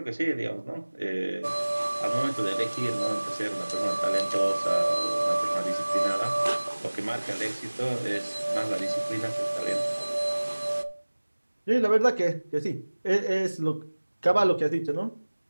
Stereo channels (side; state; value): both; inverted; correlation -1.00